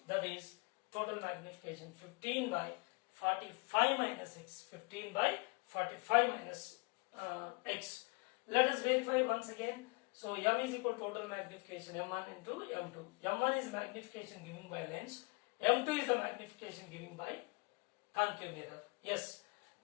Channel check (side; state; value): right; quieter; 31.9 dB